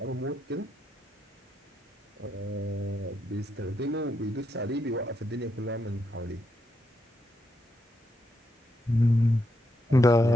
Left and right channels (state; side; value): normal; both; correlation 0.81